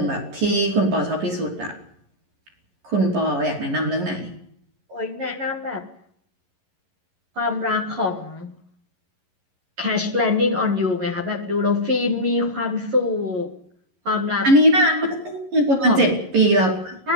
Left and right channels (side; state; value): left; late; 11 ms